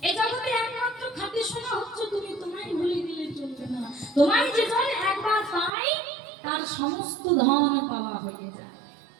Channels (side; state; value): left; drops out; at 5.7 s